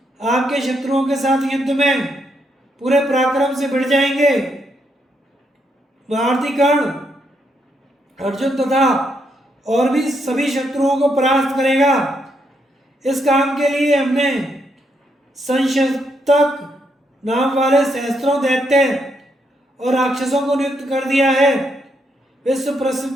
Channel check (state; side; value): normal; both; correlation 0.77